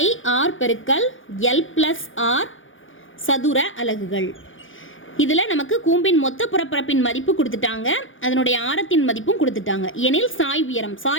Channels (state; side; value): late; right; 0.57 ms